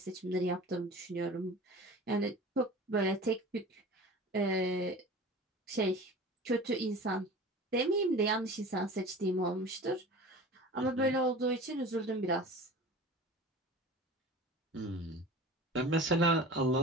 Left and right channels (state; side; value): normal; both; correlation 0.38